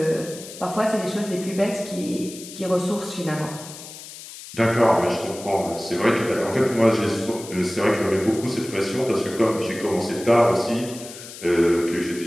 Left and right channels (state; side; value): noise; left; hiss, 14 dB below the sound